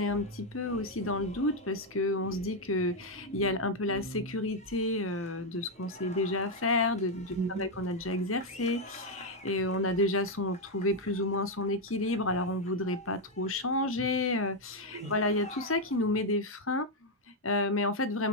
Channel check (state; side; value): normal; both; correlation 0.02